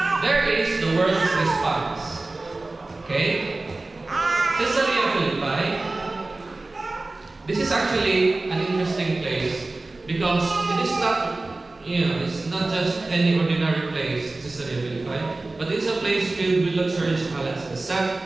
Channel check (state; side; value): quieter; left; 3.1 dB